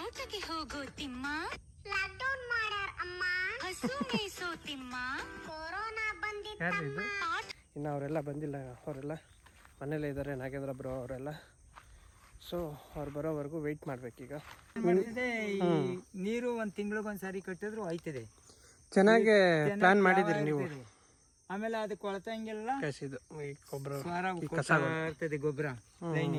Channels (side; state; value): both; identical; correlation 1.00